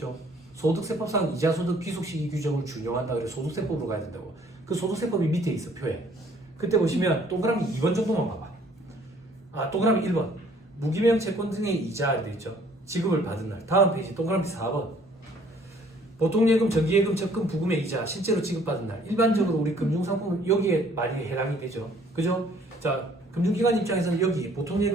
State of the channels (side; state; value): both; normal; correlation 0.59